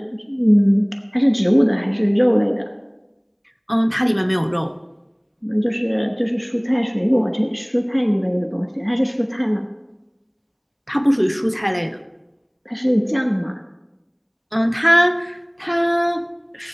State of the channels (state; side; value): identical; both; correlation 1.00